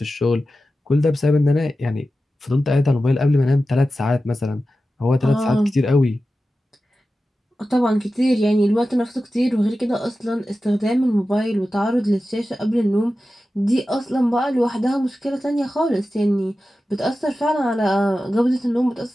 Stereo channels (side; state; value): both; normal; correlation 0.93